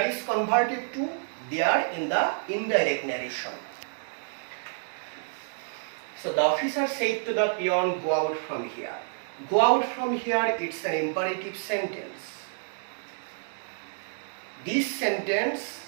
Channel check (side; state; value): left; silent; digital silence